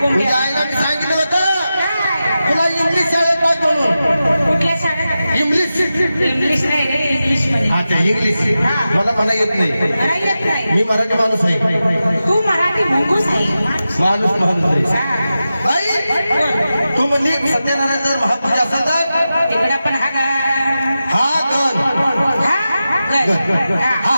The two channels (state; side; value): inverted; both; correlation -0.92